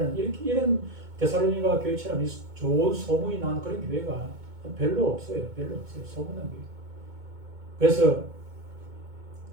이런 데살로니가 교회처럼 좋은 소문이 난 그런 교회가 별로 없어요. 소문난 교회. 그래서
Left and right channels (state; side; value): late; left; 2.2 ms